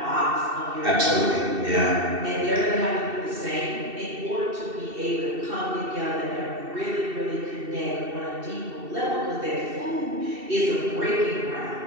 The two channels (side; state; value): left; late; 2.7 ms